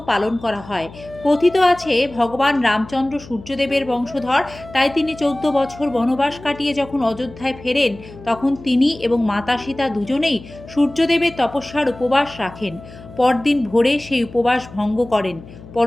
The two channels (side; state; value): left; noise; hum, 18 dB below the sound